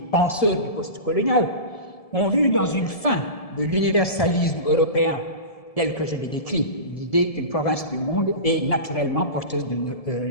penseurs du postcolonial ont vu dans une fin de l'universalisme européen tel que je l'ai décrit, l'idée qu'une province du monde est naturellement porteuse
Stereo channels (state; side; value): late; right; 1.7 ms